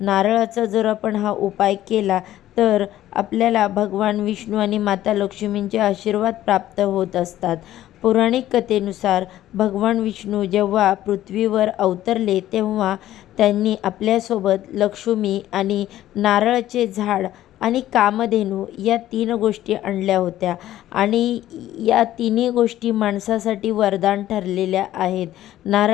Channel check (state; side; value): quieter; right; 13.5 dB